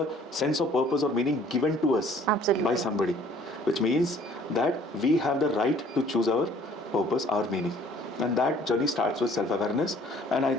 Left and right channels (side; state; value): both; normal; correlation 0.56